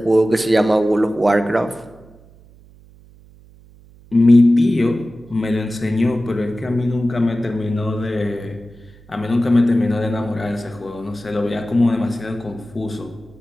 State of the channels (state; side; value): noise; right; hum, 25 dB below the sound